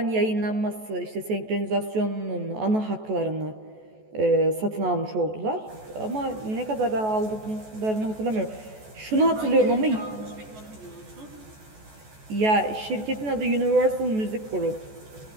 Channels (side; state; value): left; late; 14 ms